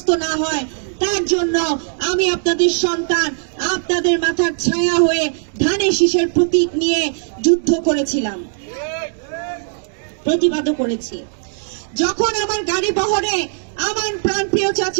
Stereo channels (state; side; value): silent; left; 67 dB below the other